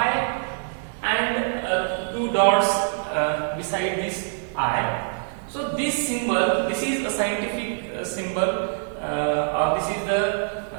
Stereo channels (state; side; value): silent; left; digital silence